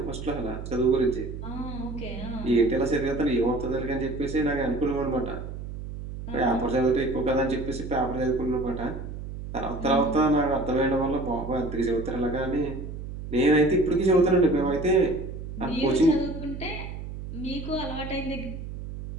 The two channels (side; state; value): right; noise; hum, 9 dB below the sound